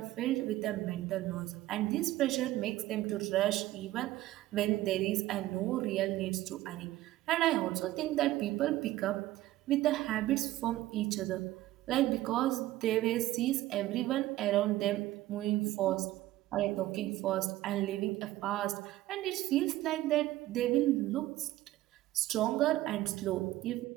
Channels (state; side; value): quieter; left; 15.8 dB